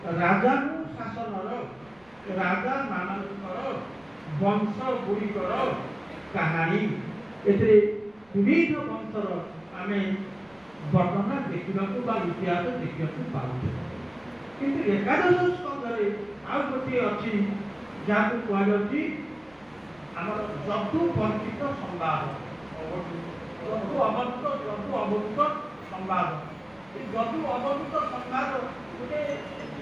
ରାଜାକୁ ଶାସନର ରାଜାମାନଙ୍କର ବଂଶ ଗୁଡ଼ିକର କାହାଣୀ। ଏଥିରେ ବିବିଧ ବଂଶର ଆମେ ବର୍ଣ୍ଣନା ଦେଖିବାକୁ ବା ଇତିହାସ ଦେଖିବାକୁ ପାଉଛୁ। କିନ୍ତୁ ଏକାଦଶ ସ୍କନ୍ଧରେ ଆଉ ଗୋଟିଏ ଅଛି ଯାହାକୁ କୁହାଯାଉଛି ଆମର ଯଦୁ ବର୍ଣ୍ଣିତ ସମ୍ବାଦ, ଯଦୁ ଅବଧୂତ ସମ୍ବାଦ। ଏ ଯଦୁ ଅବଧୂତ ସମ୍ବାଦ ଗୋଟେ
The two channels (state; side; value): noise; right; rumble, 30 dB below the sound